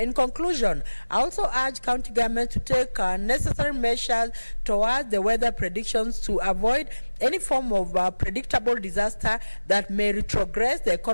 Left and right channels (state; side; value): inverted; both; correlation -1.00